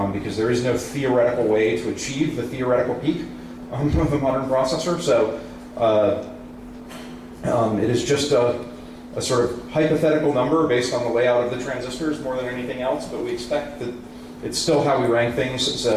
because there is no theoretical way to achieve the theoretical peak of a modern processor. So it is just a sort of hypothetical number based on the layout of the transistors more than anything else, but we expect that it's still how we rank things,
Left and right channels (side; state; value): both; identical; correlation 1.00